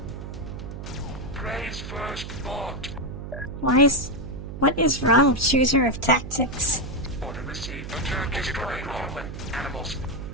Praise first bought. What is wrong with Chooser of Tactics? Order received. Destroying human animals.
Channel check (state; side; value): noise; right; hum, 9 dB below the sound